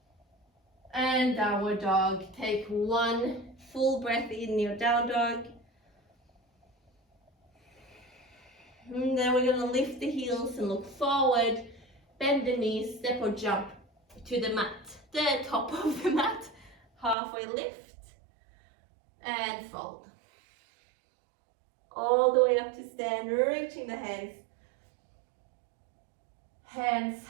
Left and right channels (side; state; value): left; drops out; at 17.2 s